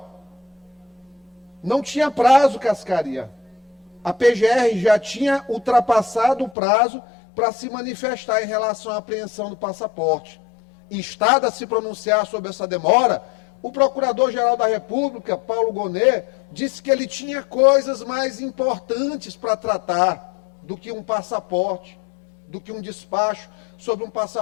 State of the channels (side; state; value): right; drops out; at 6.6 s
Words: não tinha prazo, Cascaria. A PGR já tinha ultrapassado o prazo para se manifestar em relação à apreensão do passaporte. Instado a se pronunciar sobre essa demora, o Procurador-Geral da República, Paulo Gonet, disse que ele tinha coisas mais importantes para tratar do que um passaporte, do que um despacho sobre um